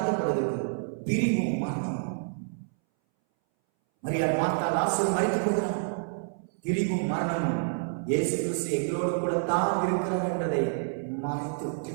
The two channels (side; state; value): left; silent; 59 dB below the other